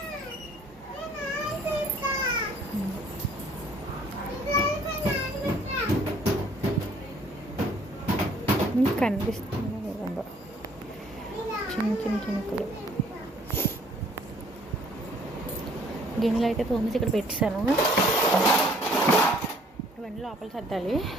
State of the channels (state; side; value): normal; both; correlation 0.60